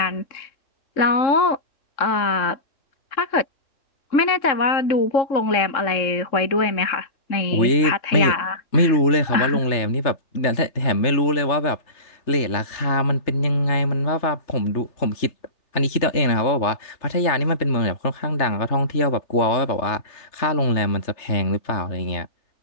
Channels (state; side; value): late; right; 3.3 ms